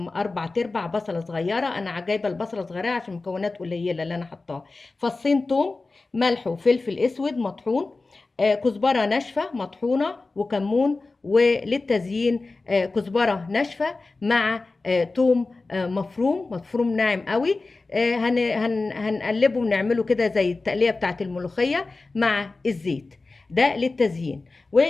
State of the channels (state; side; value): quieter; right; 3.6 dB